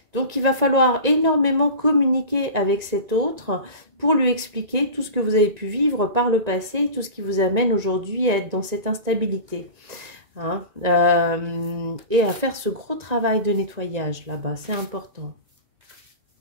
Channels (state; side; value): late; left; 1.9 ms